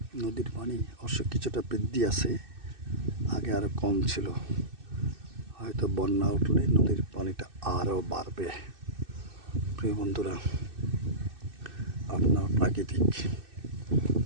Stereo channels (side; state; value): left; late; 2.6 ms